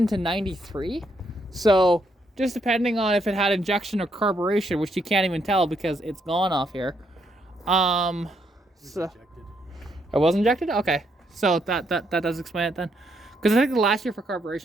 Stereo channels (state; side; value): normal; both; correlation 0.75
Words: to 93. So just depending on if it had injection or carburation, which you can't even tell because it's gone off here. So it was injected? Okay. So that does explain it then. Because I think the last year for